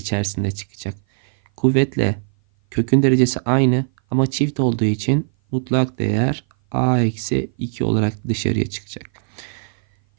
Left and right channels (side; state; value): left; silent; 57 dB below the other